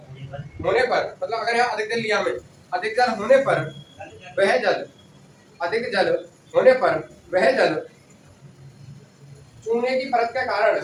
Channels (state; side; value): identical; both; correlation 1.00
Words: होने पर मतलब अगर यहाँ अधिक जल लिया में अधिक जल होने पर वह जल चूने की परत